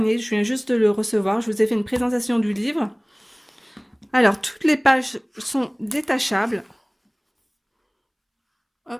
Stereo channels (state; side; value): identical; both; correlation 1.00